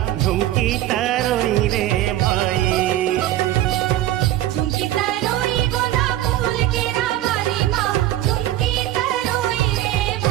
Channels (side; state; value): left; quieter; 14.0 dB